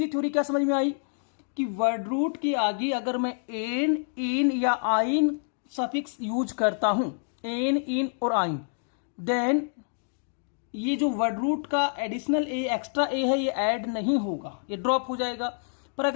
थ्योरी क्या समझ में आई कि वर्ड रूट के आगे अगर मैं एन, इन या आइन सफिक्स यूज करता हूं, एन, इन और आइन, देन ये जो वर्ड रूट का एडिशनल ए, एक्स्ट्रा ए है, ये ऐड नहीं होगा, ये ड्रॉप हो जाएगा। पर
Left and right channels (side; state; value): right; silent; 60 dB below the other